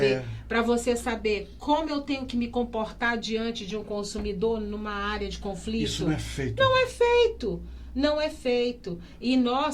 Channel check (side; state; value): both; identical; correlation 1.00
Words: para você saber como eu tenho que me comportar diante de um consumidor numa área de conflito. Isso não é feito. Não é feito. Não é feito. E